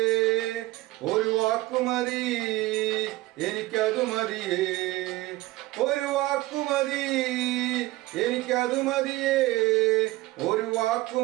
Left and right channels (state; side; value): quieter; left; 19.0 dB